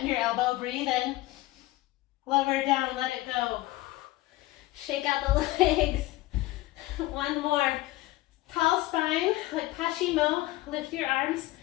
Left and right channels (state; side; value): quieter; right; 18.1 dB